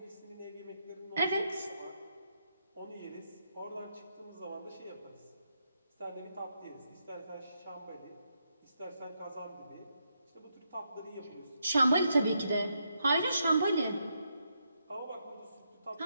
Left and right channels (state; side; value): inverted; both; correlation -0.80